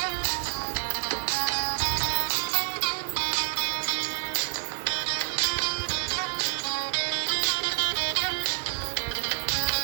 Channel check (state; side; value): silent; left; digital silence